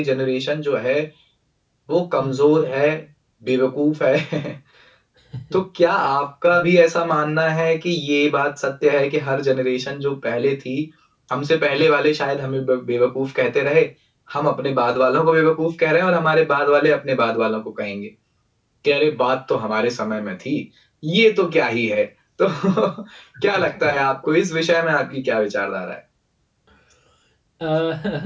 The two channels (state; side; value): identical; both; correlation 1.00